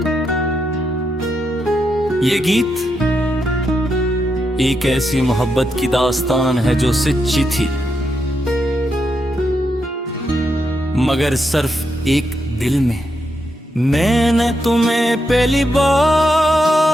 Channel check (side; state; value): both; normal; correlation 0.83